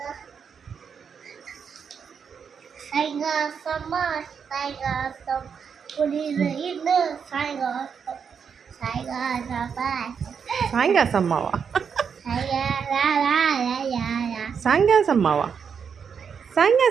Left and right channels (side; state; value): left; quieter; 6.7 dB